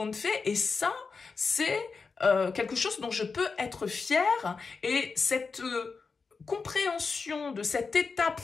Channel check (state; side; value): quieter; right; 4.8 dB